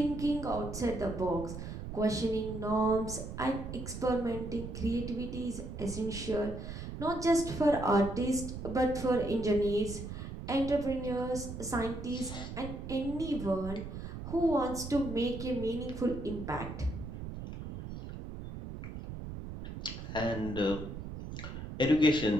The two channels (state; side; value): noise; right; rumble, 8 dB below the sound